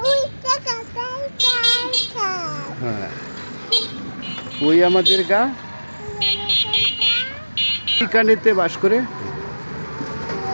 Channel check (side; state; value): both; inverted; correlation -1.00